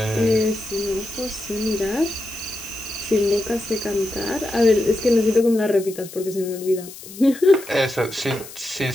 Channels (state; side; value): noise; left; hiss, 15 dB below the sound